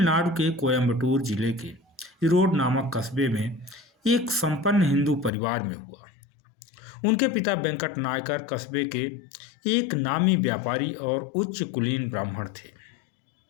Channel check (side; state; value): right; drops out; at 5.3 s